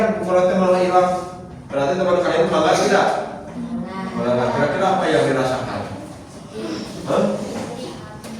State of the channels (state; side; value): identical; both; correlation 1.00